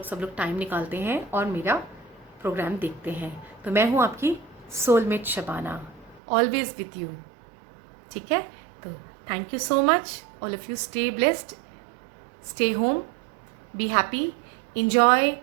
सब लोग टाइम निकालते हैं और मेरा प्रोग्राम देखते हैं। तो मैं हूँ आपकी soulmate Shabana, always with you. ठीक है, तो thank you so much all of you. Stay blessed, stay home, be happy, enjoy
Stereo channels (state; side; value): drops out; left; at 6.2 s